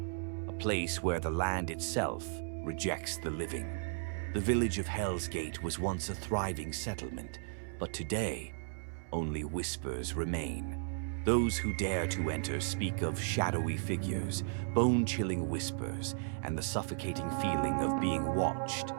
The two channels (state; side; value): silent; left; digital silence